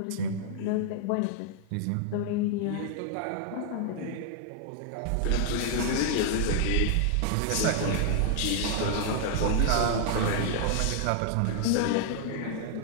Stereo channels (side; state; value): both; different; correlation -0.01